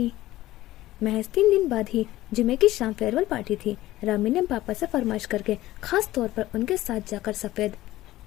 महज 3 दिन बाद ही जुमे की शाम फेयरवेल पार्टी थी। रामीन ने पापा से फरमाइश करके खास तौर पर उनके साथ जाकर सफ़ेद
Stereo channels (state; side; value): quieter; right; 16.0 dB